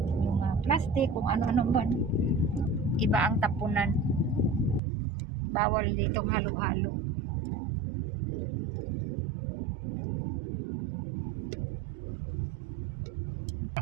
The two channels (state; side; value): drops out; left; at 4.8 s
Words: Yung plastic, kung ano-ano ba. Iba ang tapunan. Bawal ditong halo-halo.